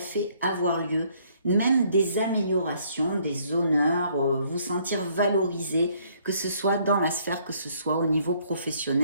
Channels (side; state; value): both; inverted; correlation -0.65